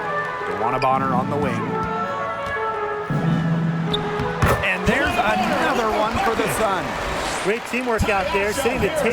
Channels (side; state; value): both; identical; correlation 1.00